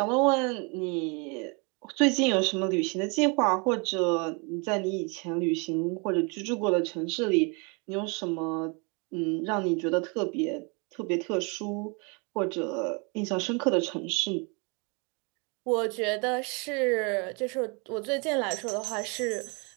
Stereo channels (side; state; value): left; quieter; 32.4 dB